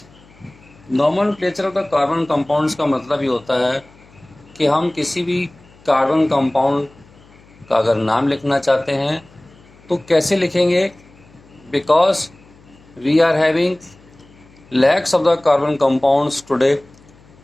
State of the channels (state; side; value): noise; left; hum, 27 dB below the sound